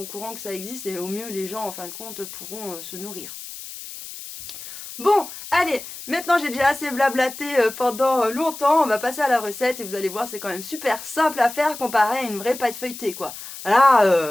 au courant que ça existe et au mieux les gens en fin de compte pourront se nourrir. Bon, allez, maintenant j'ai déjà assez blablaté pendant longtemps, on va passer à la recette et vous allez voir c'est quand même super simple à faire comparé à une vraie pâte feuilletée quoi.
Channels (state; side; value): noise; left; hiss, 12 dB below the sound